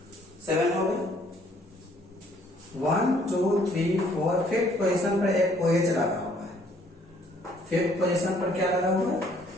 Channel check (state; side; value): normal; both; correlation 0.63